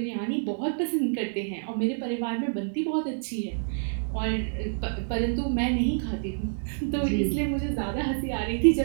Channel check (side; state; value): left; silent; digital silence